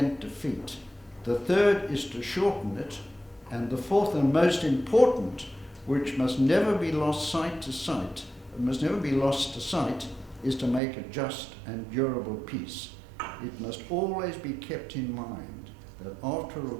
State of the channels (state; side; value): drops out; left; at 10.8 s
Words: defeat. The third is to shorten it. And the fourth and most important, which must never be lost to sight, is to make a just and durable peace. It must always be kept in mind that after a